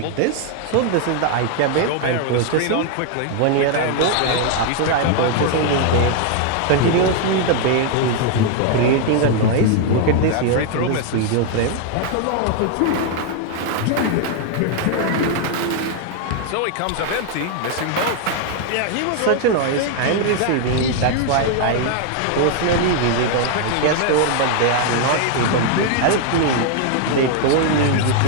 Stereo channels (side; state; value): both; different; correlation 0.00